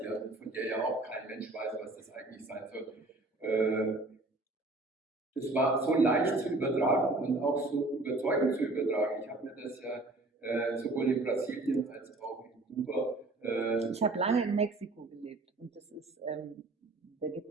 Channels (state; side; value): quieter; left; 3.0 dB